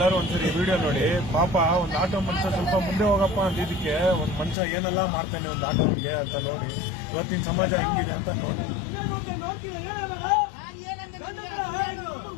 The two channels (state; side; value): drops out; right; at 4.5 s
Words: ಒಂದ್ಸರಿ ವಿಡಿಯೋ ನೋಡಿ. ಪಾಪ ಒಂದು ಆಟೋ ಮನುಷ್ಯ ಸ್ವಲ್ಪ ಮುಂದೆ ಹೋಗಪ್ಪ ಅಂದಿದ್ದಕ್ಕೆ ಒಂದು ಮನುಷ್ಯ ಏನೆಲ್ಲ ಮಾಡ್ತಾನೆ ಒಂದು ಆಟೋನ್ಗೆ ಅಂತ ನೋಡಿ. ಇವತ್ತಿನ ಸಮಾಜ ಹೆಂಗಿದೆ ಅಂತ ನೋಡಿ.